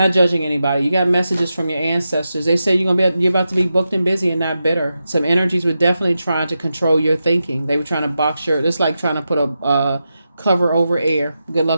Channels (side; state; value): both; inverted; correlation -0.89